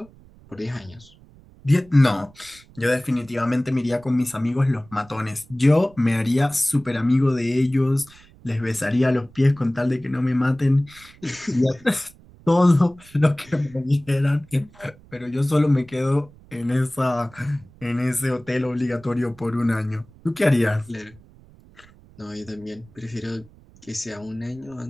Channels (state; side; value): noise; right; rumble, 25 dB below the sound